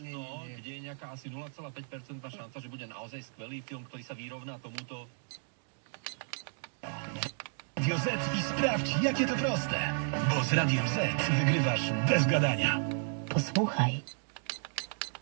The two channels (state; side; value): silent; left; 56 dB below the other